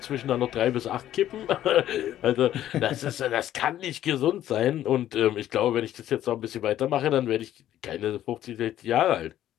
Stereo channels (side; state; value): right; quieter; 12.3 dB